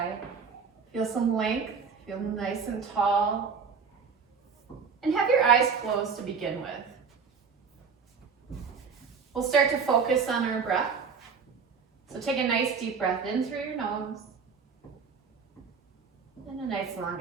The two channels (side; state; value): left; quieter; 5.7 dB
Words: Feel some length, feel nice and tall. And have your eyes closed to begin with. We'll start to focus on our breath. So take a nice deep breath in through your nose. And a nice long